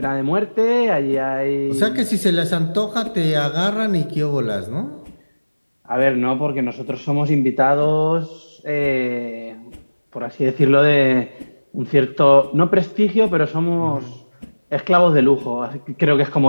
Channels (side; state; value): both; inverted; correlation -1.00